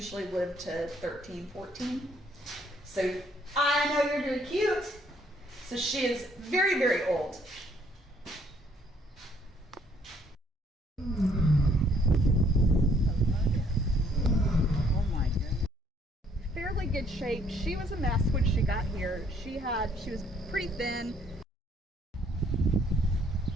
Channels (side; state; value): both; normal; correlation 0.65